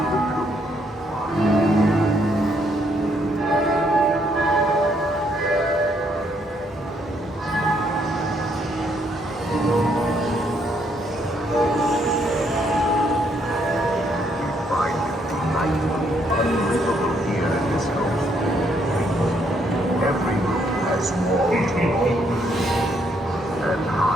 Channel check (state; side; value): normal; both; correlation 0.71